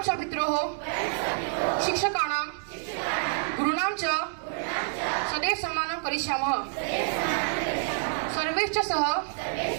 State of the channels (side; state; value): left; silent; digital silence